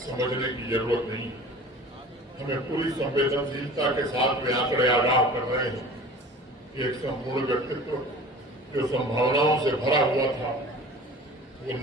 की जरूरत नहीं है। हमें पूरी संवेदनशीलता के साथ वे आंकड़े आगाह कर रहे हैं कि एक संपूर्ण व्यक्तित्व जो संभावनाओं से भरा हुआ था, वो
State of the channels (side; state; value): both; normal; correlation 0.41